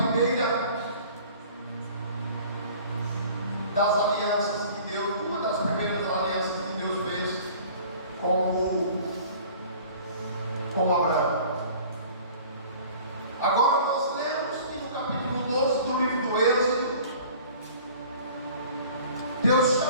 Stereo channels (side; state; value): both; inverted; correlation -0.47